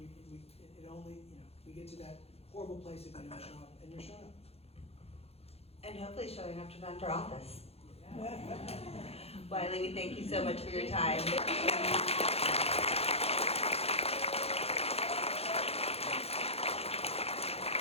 we get to that horrible place if you don't show up, and you're showing up. And hopefully showing up to run for office. Wiley, we thank you so much for your time.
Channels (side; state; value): right; late; 0.29 ms